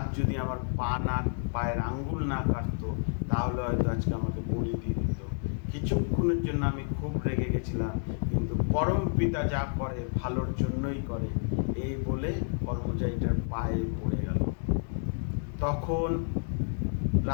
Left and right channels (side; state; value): right; silent; 58 dB below the other